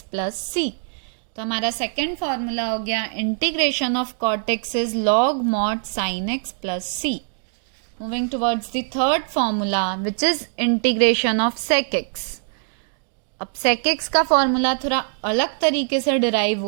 plus c। तो हमारा second formula हो गया integration of cot x is log mod sin x plus c। Moving towards the third formula which is integration of sec x। अब sec x का formula थोड़ा अलग तरीके से डिराइव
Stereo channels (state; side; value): silent; left; digital silence